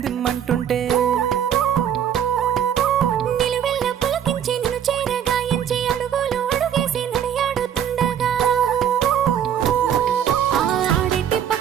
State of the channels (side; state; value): left; quieter; 9.3 dB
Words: నిలువెల్ల పులకించి నిన్ను చేరగాయించి అడుగులు అడుగేసి నడియాడుతుండగా ఆడెట్టి